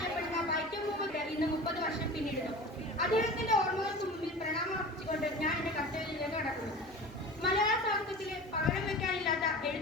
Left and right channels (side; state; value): both; normal; correlation 0.35